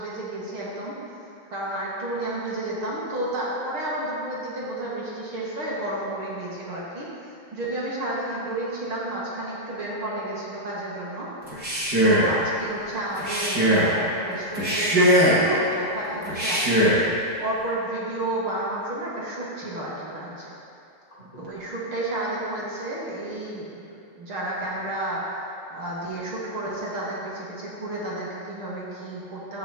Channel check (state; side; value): late; left; 5.0 ms